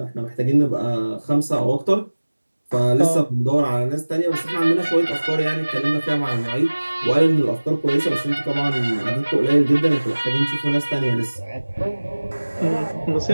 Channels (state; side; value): inverted; both; correlation -1.00